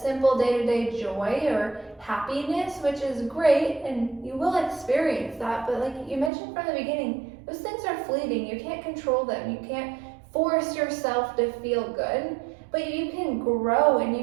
day-to-day joy or happiness, which is great, and you will experience that. But like you mentioned from the beginning, those things are fleeting. You can't control them. You can't force yourself to feel good, but you can grow and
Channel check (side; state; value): left; drops out; at 6.3 s